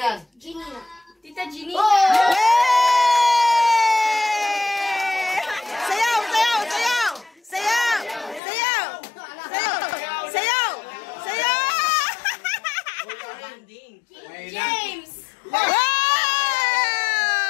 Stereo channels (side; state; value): right; drops out; at 8.4 s